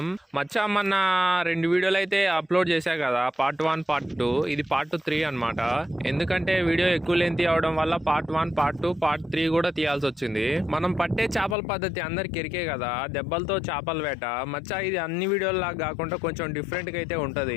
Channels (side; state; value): right; drops out; at 11.6 s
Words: మచ్చా. మొన్న 2 వీడియోలు అయితే అప్లోడ్ చేశా కదా, పార్ట్ 1 పార్ట్ 2. ఇది పార్ట్ 3 అనమాట. ఎందుకంటే వీడియో ఎక్కువ లెంత్ అవడం వల్ల పార్ట్ 1 పార్ట్ 2 పార్ట్ 3 కూడా తీయాల్సి వచ్చింది. మనం పట్టే చేపల పద్ధతి అందరికి ఎరికే కదా, దెబ్బలతో చేపల వేట. మచ్చా ఇది అన్ని వీడియోల్లాగా కాకుండా కొంచెం డిఫరెంట్ గా అయితే